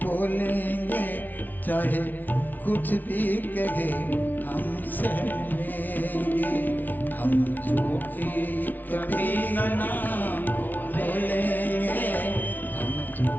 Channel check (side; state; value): right; late; 0.083 ms